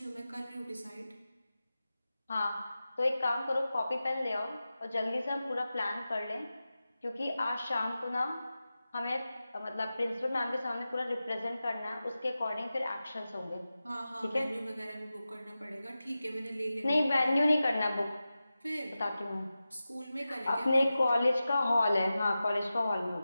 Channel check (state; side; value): inverted; both; correlation -0.94